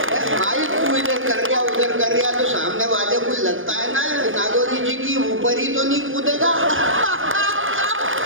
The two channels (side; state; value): left; late; 0.58 ms